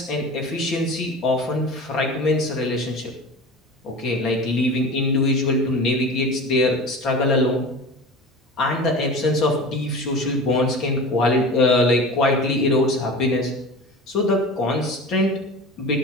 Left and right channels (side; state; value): both; normal; correlation 0.34